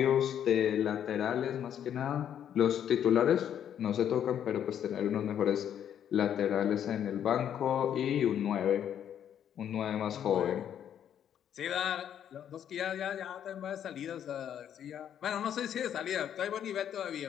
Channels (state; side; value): quieter; right; 9.6 dB